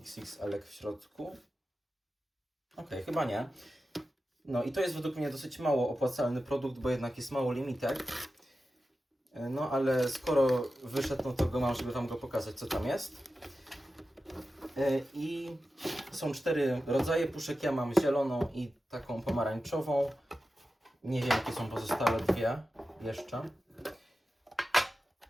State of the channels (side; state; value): both; normal; correlation 0.93